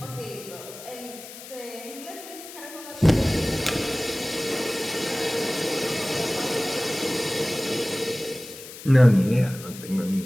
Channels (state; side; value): noise; left; hiss, 14 dB below the sound